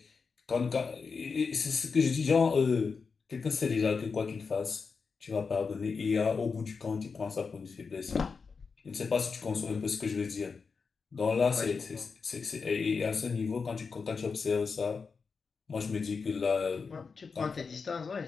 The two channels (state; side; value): quieter; right; 5.1 dB